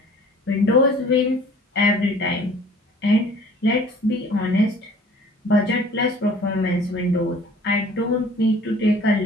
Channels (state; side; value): normal; both; correlation 0.50